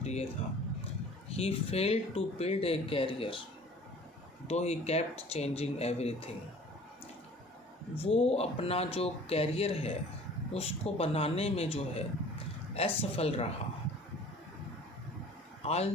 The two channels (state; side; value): normal; both; correlation 0.48